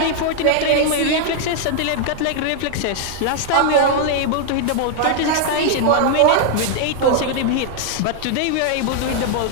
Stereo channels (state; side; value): different; both; correlation -0.01